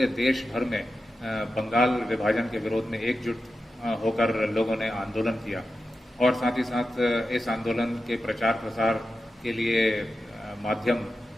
देश भर में बंगाल विभाजन के विरोध में एकजुट होकर लोगों ने आंदोलन किया और साथ ही साथ इस आंदोलन के प्रचार प्रसार के लिए माध्यम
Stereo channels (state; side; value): normal; both; correlation 0.91